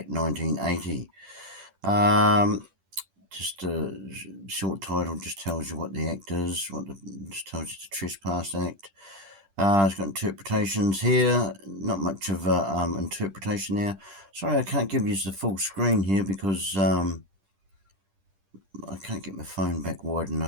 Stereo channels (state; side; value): late; left; 10 ms